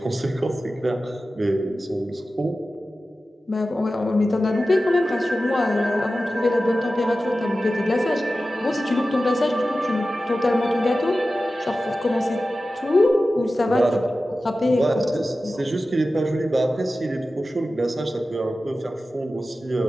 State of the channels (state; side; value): normal; both; correlation 0.94